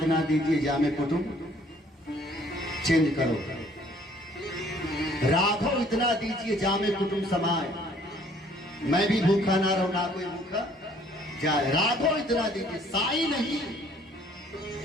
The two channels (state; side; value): normal; both; correlation 0.59